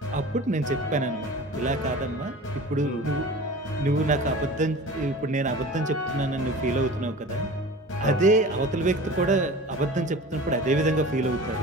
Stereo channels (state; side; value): normal; both; correlation 0.38